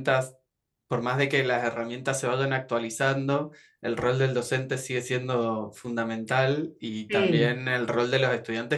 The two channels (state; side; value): identical; both; correlation 1.00